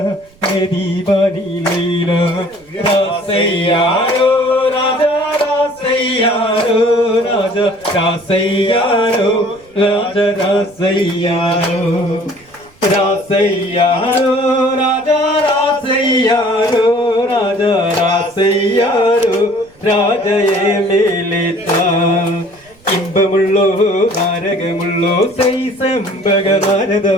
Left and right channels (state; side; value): noise; right; rumble, 29 dB below the sound